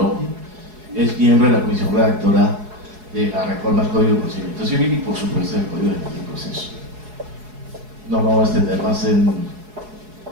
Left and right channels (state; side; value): late; left; 4.7 ms